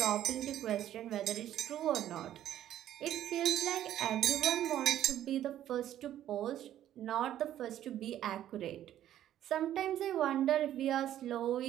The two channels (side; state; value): left; quieter; 11.9 dB